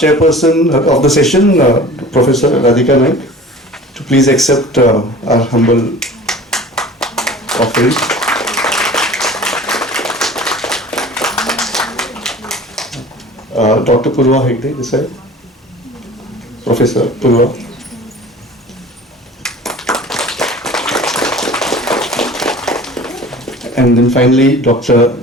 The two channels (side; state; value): both; normal; correlation 0.42